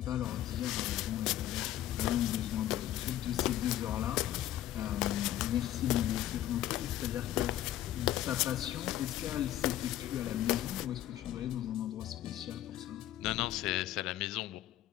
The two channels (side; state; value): right; quieter; 12.8 dB